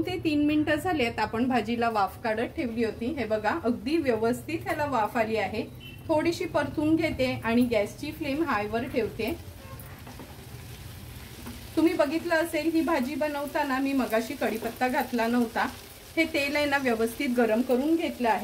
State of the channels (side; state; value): both; identical; correlation 1.00